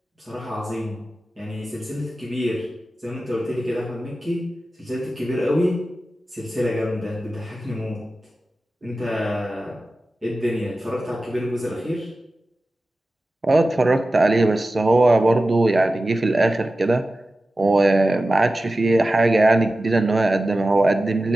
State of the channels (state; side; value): normal; both; correlation 0.95